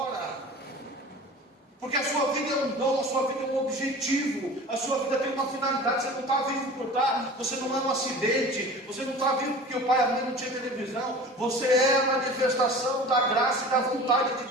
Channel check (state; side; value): normal; both; correlation 0.39